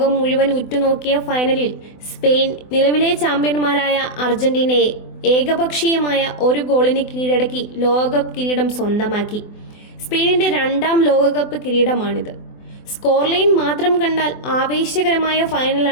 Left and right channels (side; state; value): right; late; 24 ms